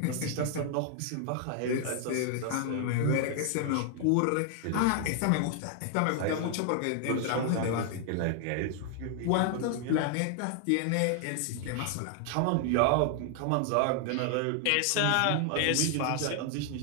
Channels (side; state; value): both; different; correlation 0.00